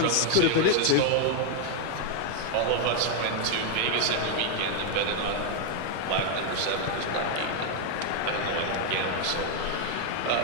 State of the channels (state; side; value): different; both; correlation 0.00